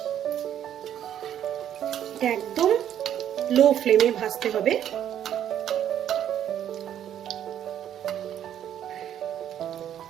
এটা একদম লো ফ্লেমে ভাজতে হবে।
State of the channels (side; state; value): left; quieter; 10.3 dB